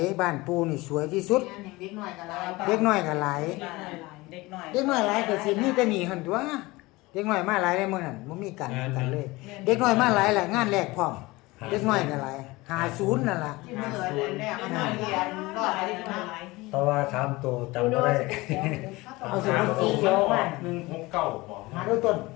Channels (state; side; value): quieter; right; 21.5 dB